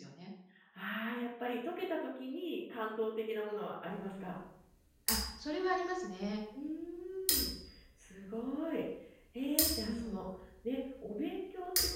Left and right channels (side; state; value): both; identical; correlation 1.00